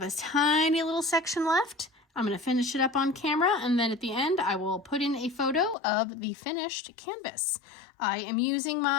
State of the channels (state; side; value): drops out; right; at 5.8 s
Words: a tiny little section left. I'm going to finish it up on camera, and then at the end, I will put in a photo of the finished canvas. I am using